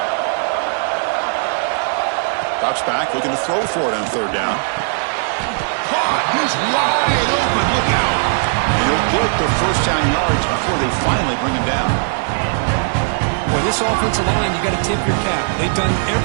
Drops back, looking to throw for it on 3rd down. Caught! He's wide open. Look out! He'll get the first down yards before they finally bring him down. Well, this offensive line, you got to tip your cap. They've done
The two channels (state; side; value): silent; left; 58 dB below the other